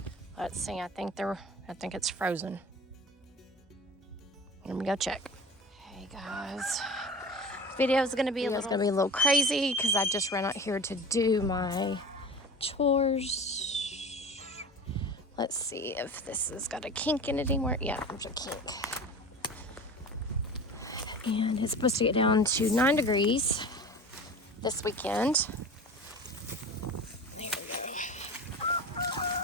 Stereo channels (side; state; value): both; normal; correlation 0.35